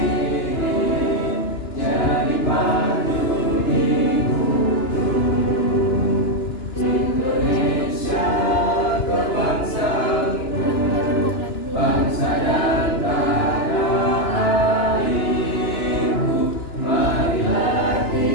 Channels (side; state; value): right; late; 2.9 ms